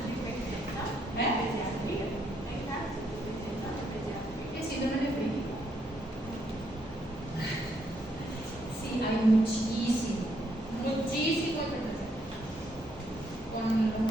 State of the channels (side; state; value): both; normal; correlation 0.74